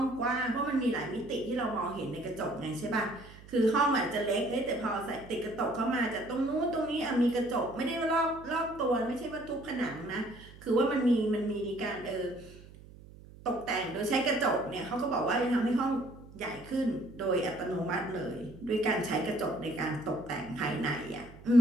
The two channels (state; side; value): noise; right; hum, 19 dB below the sound